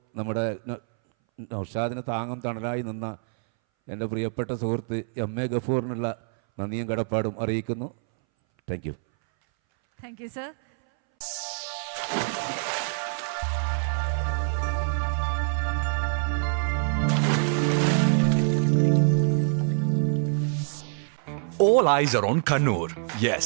നമ്മുടെ നൗഷാദിന് താങ്ങും തണലായി നിന്ന എൻ്റെ പ്രിയപ്പെട്ട സുഹൃത്ത് എം.എ. ഗഫൂറിനുള്ള നന്ദിയും കടപ്പാടും അറിയിക്കുന്നു. Thank you. Thank you sir. All eyes are on Kannur. Yes,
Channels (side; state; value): left; silent; 60 dB below the other